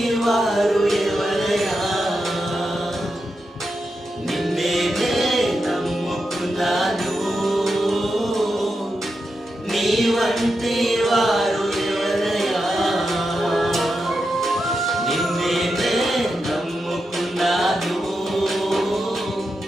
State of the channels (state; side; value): normal; both; correlation 0.87